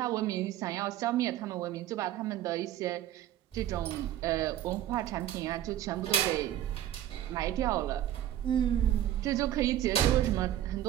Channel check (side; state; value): left; quieter; 12.3 dB